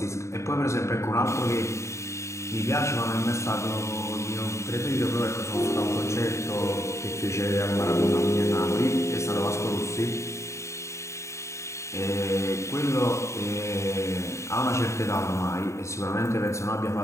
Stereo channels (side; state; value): right; late; 0.14 ms